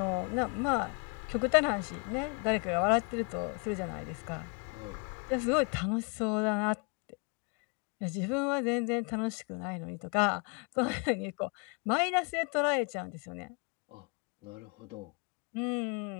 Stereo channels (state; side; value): quieter; right; 35.1 dB